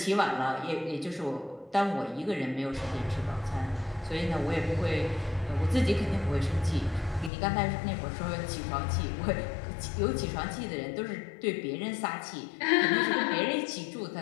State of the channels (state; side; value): drops out; right; at 7.3 s